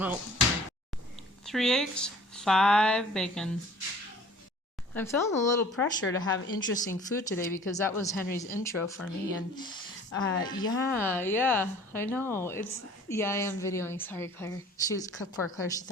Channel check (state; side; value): normal; both; correlation 0.49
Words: 3 eggs. 5 bacon. I'm feeling a little pressure to have interesting food today because that was Henry's intro for me, and yeah, I know. I am videoing. Sorry, Claire. Poor Claire, she